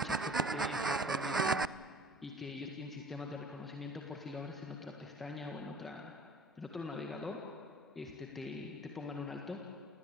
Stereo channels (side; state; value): both; normal; correlation 0.46